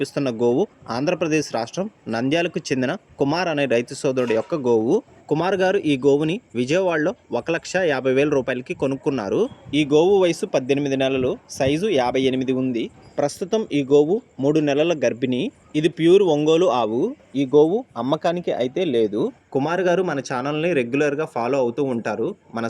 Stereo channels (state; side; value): identical; both; correlation 1.00